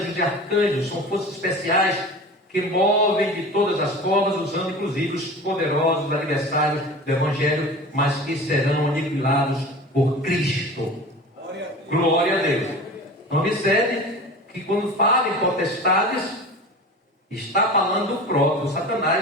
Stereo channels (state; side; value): normal; both; correlation 0.35